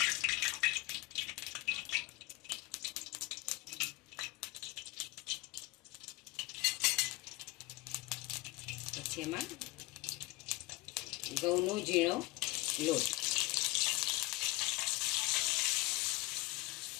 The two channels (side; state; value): right; quieter; 22.6 dB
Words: પછી એમાં ઘઉંનો ઝીણો લોટ,